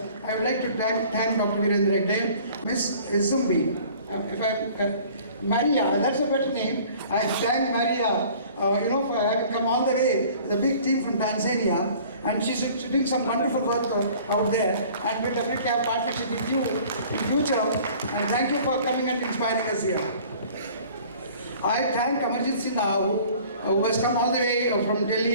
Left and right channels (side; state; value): both; inverted; correlation -0.50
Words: I would like to thank Dr. Virendra Hegde, Miss Zumbi, Maria, that's a better name. I thank Maria, for having come all the way, the big team from Tanzania, and she's doing some wonderful work out there, and we'll definitely have partnership with you in future, and thank you for coming and inspiring us here. I thank Amarjit Sinha, who has come all the way from